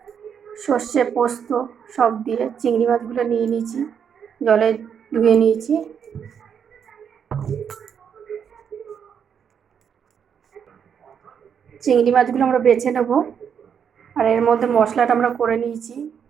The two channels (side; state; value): left; quieter; 7.6 dB